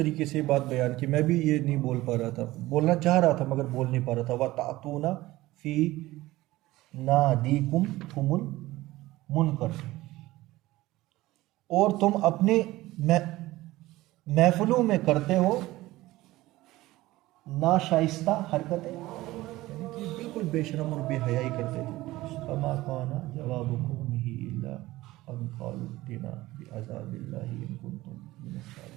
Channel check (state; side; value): quieter; left; 17.8 dB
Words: से ये बात बयान की, मैं भी ये नहीं बोल पा रहा था, बोलना चाह रहा था मगर बोल नहीं पा रहा था। व तातूना फी नादीकुम तुमुल मुनकर, और तुम अपने महफिलों में करते हो नाशाइस्ता हरकतें, यानी कि बिल्कुल बेशरम और बेहयाई करते थे। फमा काना जवाबुकुम ही इल्ला अन क़ालू इत्तिना बिअज़ाबिल्लाहि इन कुंतुम मिनस